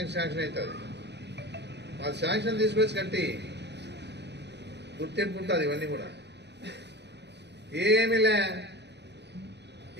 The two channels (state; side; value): late; left; 0.50 ms